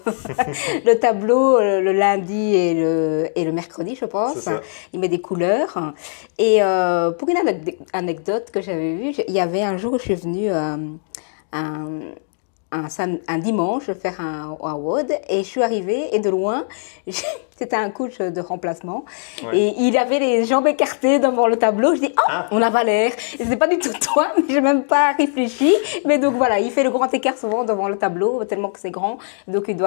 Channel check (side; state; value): right; silent; digital silence